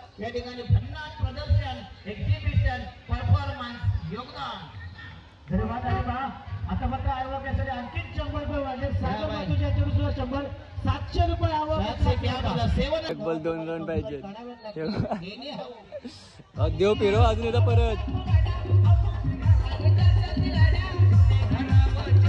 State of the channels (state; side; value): identical; both; correlation 1.00